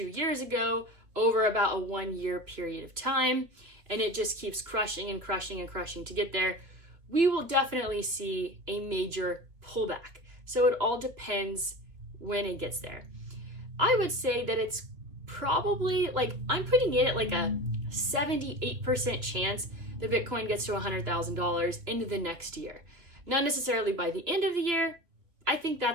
years ago, over about a 1 year period of time, and it just keeps crushing and crushing and crushing to get there, we will definitely see a major pullback. So it all depends when it gets there. I would say that it's probably, like, I'm putting it at like a 78% chance that Bitcoin gets to $100,000 into the next year. Not necessarily by the end of the year. I think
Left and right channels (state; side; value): late; left; 3.2 ms